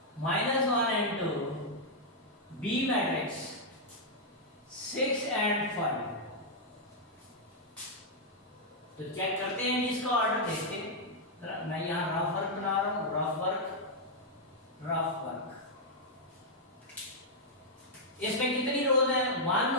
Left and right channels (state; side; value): normal; both; correlation -0.05